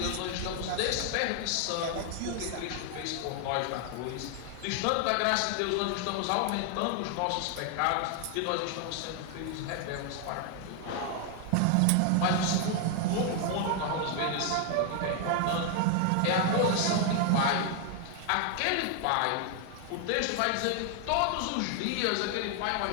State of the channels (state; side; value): different; both; correlation 0.00